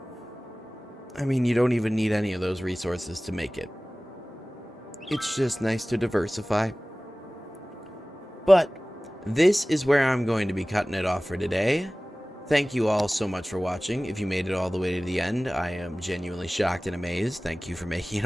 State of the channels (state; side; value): normal; both; correlation 0.98